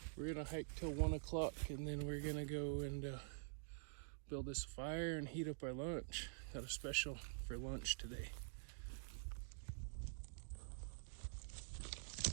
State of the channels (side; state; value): left; silent; digital silence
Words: We're gonna hike till 1 o'clock and then we're gonna go and build this fire and heat up our lunch. Got a special for lunch today.